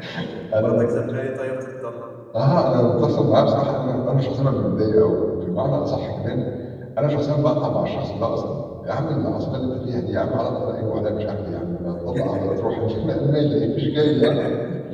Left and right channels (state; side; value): identical; both; correlation 1.00